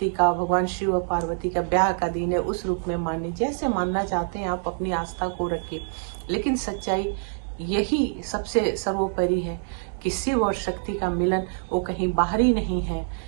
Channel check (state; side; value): silent; left; digital silence